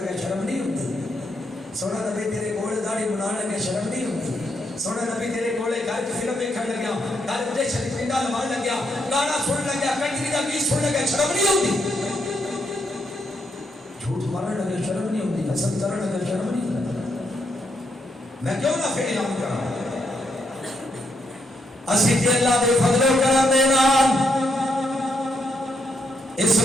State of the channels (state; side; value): normal; both; correlation 0.78